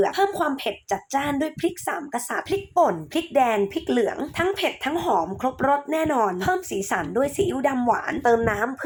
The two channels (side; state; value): both; identical; correlation 1.00